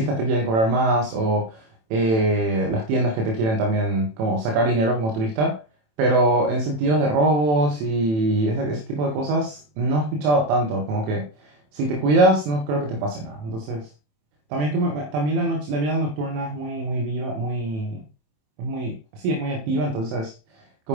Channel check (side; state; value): left; late; 27 ms